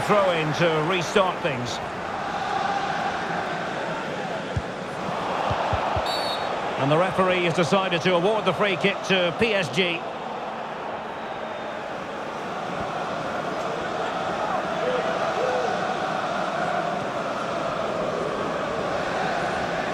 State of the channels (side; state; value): both; identical; correlation 1.00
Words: to restart things. And the referee has decided to award the free kick to PSG.